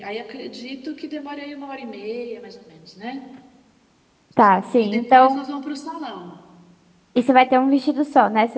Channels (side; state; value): both; identical; correlation 1.00